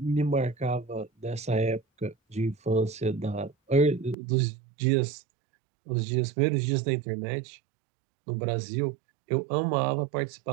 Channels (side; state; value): left; drops out; at 4.2 s